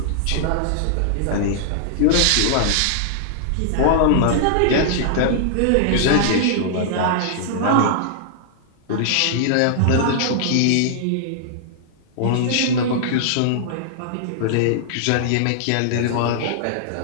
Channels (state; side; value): different; both; correlation -0.01